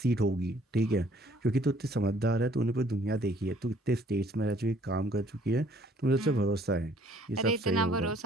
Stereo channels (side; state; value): both; normal; correlation 0.60